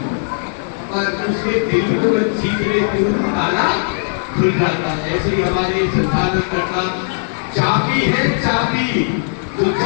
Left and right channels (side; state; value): right; silent; digital silence